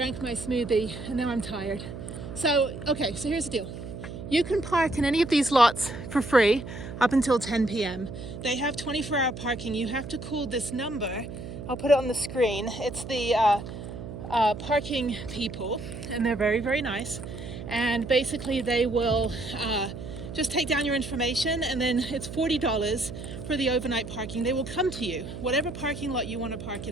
my smoothie, and now I'm tired. So, okay, so here's the deal. You can park in any of these lots for free up until 10 p.m. They have 24-hour parking. You have to call this number. I'll put it on the screen. It's the parking people, and they're very, very nice. And basically they will just take down your information, and then it's $40 for the overnight parking. They will come to you, whatever parking lot you want to park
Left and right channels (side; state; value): right; noise; hum, 10 dB below the sound